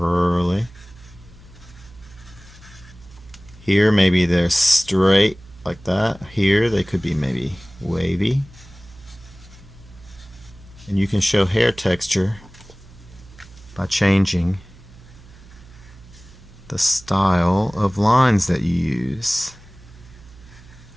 Here maybe they're straight like that. Here they could be maybe wavy. And you can show hair texture by changing the style of lines that you use.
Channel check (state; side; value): noise; right; hum, 22 dB below the sound